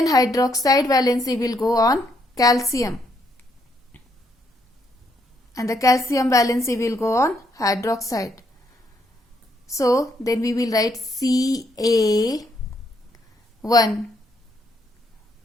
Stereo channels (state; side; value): normal; both; correlation 0.74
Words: hydroxide valency will go on calcium and the calcium valency will go on hydroxide. So then we will write Ca1